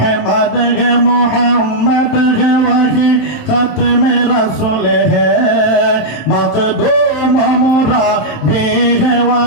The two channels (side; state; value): right; late; 27 ms